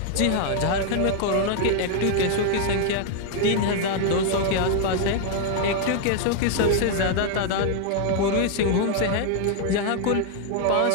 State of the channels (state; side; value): different; both; correlation 0.00